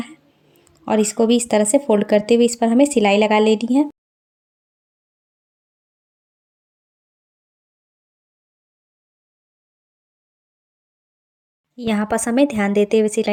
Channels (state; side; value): identical; both; correlation 1.00